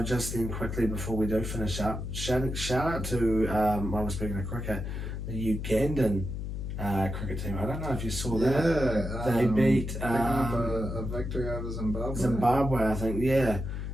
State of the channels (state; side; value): noise; left; hum, 5 dB below the sound